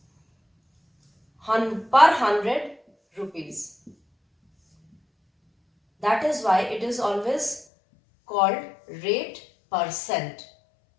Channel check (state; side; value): drops out; right; at 7.7 s